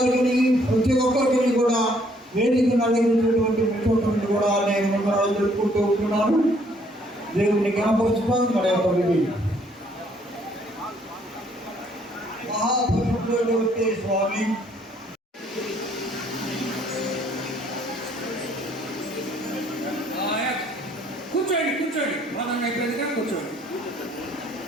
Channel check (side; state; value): both; normal; correlation 0.65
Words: ప్రతి ఒక్కరికి కూడా వేదిక నడిగినటువంటి మిత్రులను కూడా నేను వందనాలు తెలుపుకుంటూ ఉంటున్నాను. దేవుని జ్ఞాపకం మన యొక్క విధి మహాపరిశుద్ధుడైనటువంటి స్వామి కూర్చోండి కూర్చోండి మనం అయిపోయిందిగా కూర్చోండి.